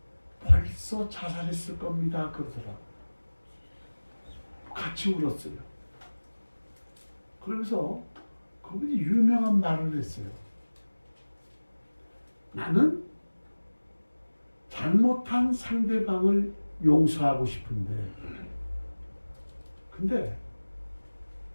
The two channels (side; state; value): both; inverted; correlation -1.00